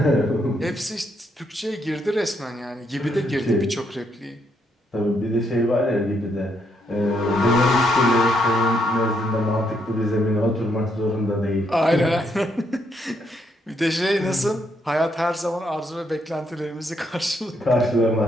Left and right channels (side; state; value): both; normal; correlation 0.75